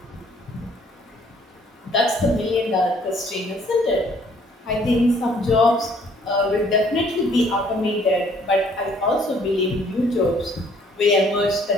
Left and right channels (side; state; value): both; normal; correlation 0.61